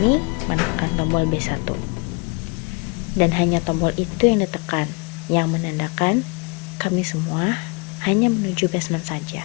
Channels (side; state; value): right; quieter; 29.6 dB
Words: menekan tombol B1. Dan hanya tombol itu yang ditekan, yang menandakan kami semua hanya menuju basement saja.